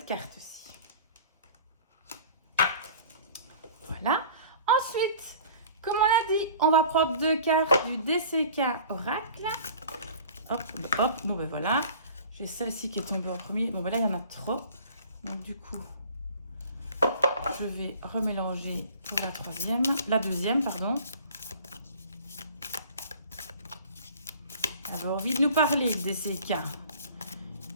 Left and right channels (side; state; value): both; inverted; correlation -0.46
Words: carte-ci. Voilà. Ensuite, comme on l'a dit, on va prendre 2 cartes du DCK Oracle. Hop, hop. Bon, ben voilà. J'ai celle-ci qui est tombée en premier. Bon, ben là, il y en a trop. Donc, du coup, je vais remélanger pour la deuxième, pardon. Elle a envie de nous parler, DCK.